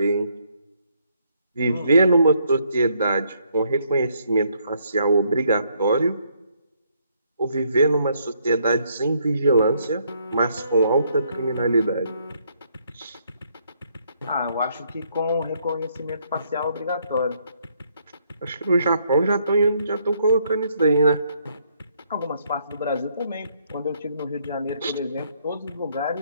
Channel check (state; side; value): inverted; both; correlation -0.71